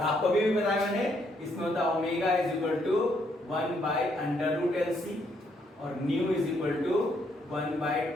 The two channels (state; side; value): normal; both; correlation 0.72